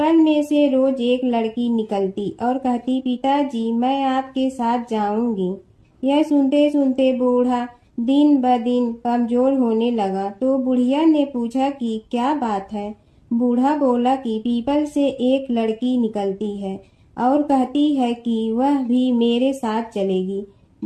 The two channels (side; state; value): both; identical; correlation 1.00